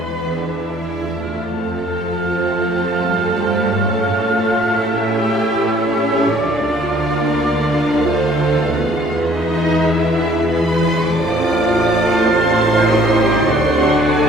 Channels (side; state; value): both; normal; correlation 0.58